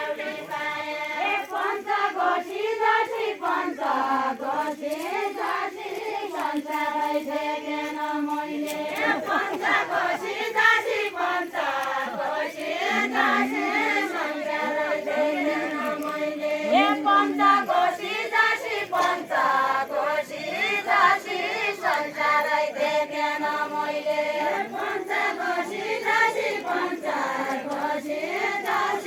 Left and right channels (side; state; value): both; identical; correlation 1.00